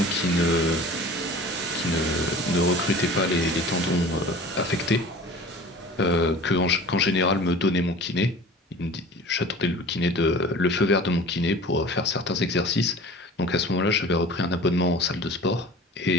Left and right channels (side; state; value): both; normal; correlation 0.41